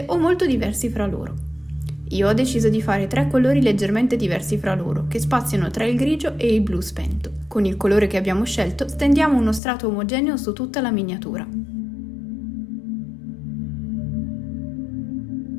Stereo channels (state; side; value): drops out; right; at 9.6 s